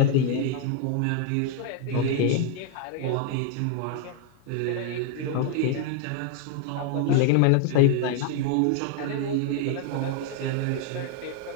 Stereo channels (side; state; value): both; different; correlation 0.00